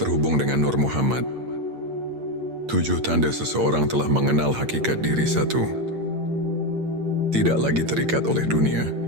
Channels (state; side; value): late; left; 8.7 ms